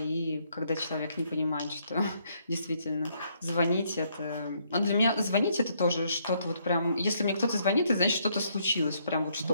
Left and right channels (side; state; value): both; inverted; correlation -0.71